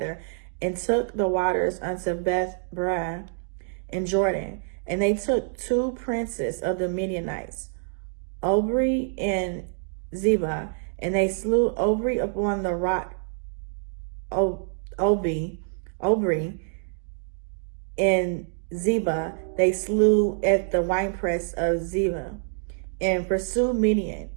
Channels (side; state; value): left; silent; digital silence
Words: and took the waters unto Beth-ram and Jordan. And they took 2 princes of the Midianites, Obri and Zebah, and they slew Obri upon the rock Obri, and Zebah they slew at the winepress of Zebah, and pursued Midian,